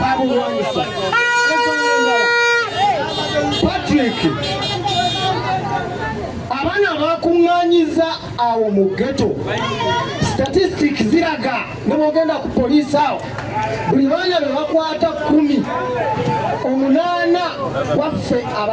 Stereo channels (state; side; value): identical; both; correlation 1.00